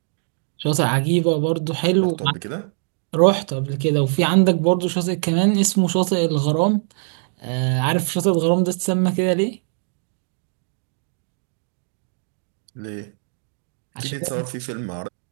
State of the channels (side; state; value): left; silent; digital silence